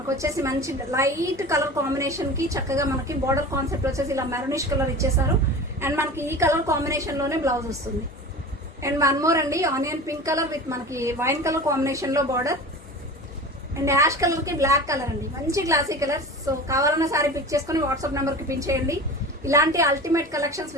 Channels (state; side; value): normal; both; correlation 0.34